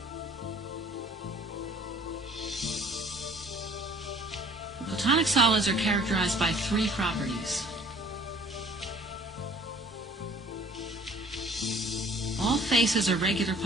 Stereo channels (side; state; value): both; normal; correlation 0.53